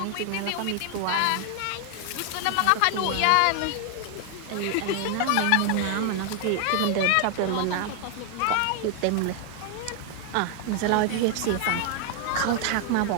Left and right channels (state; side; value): different; both; correlation 0.00